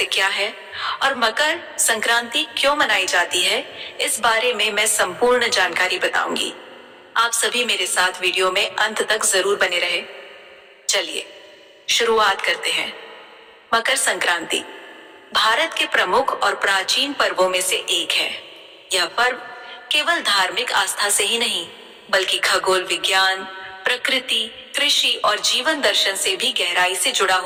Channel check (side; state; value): both; identical; correlation 1.00